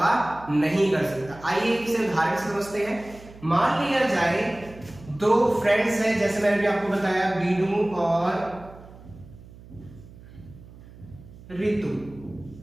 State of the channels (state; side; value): noise; right; hum, 19 dB below the sound